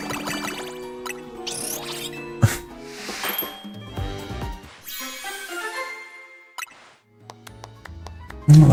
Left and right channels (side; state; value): both; identical; correlation 1.00